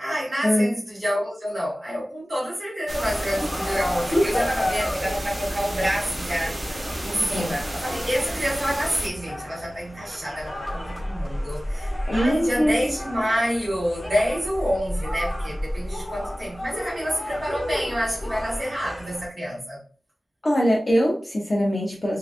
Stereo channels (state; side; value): normal; both; correlation 0.96